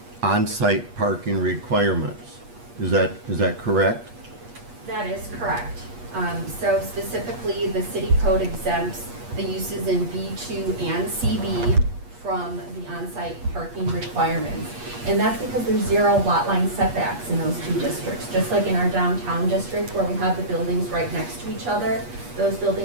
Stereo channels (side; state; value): left; late; 8.4 ms